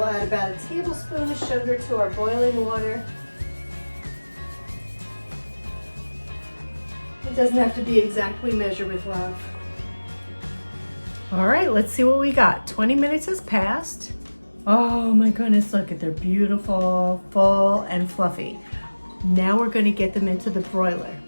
add about a tablespoon of sugar to our boiling water. It doesn't have to be exactly measured with love. All right, let's see what we got. 20 minutes has passed. Oh my goodness, look at they're beautiful, full and fluffy. Now we're gonna get them into the broiler.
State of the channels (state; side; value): inverted; both; correlation -1.00